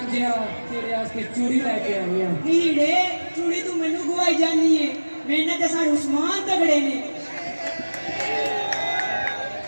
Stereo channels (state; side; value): inverted; both; correlation -1.00